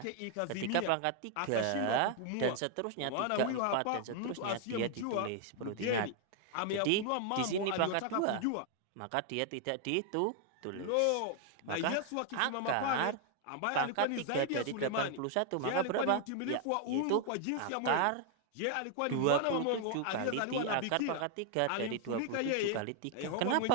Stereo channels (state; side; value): different; both; correlation 0.00